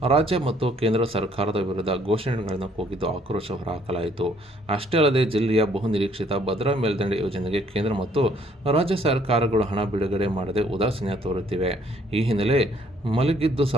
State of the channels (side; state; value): both; normal; correlation 0.64